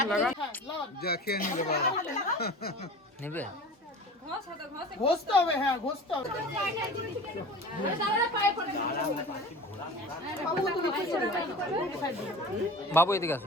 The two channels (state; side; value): normal; both; correlation 0.37